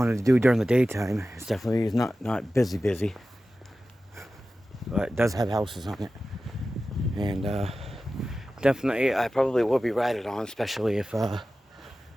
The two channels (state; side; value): normal; both; correlation 0.94